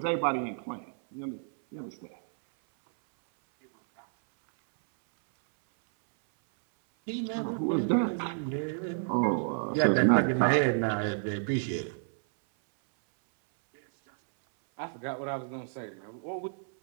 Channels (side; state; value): left; silent; 58 dB below the other